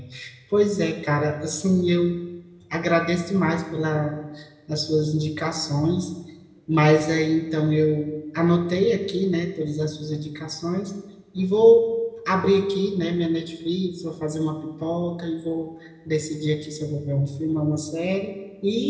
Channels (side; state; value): both; identical; correlation 1.00